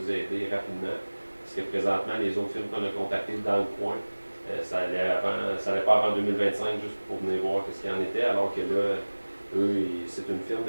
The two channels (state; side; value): inverted; both; correlation -1.00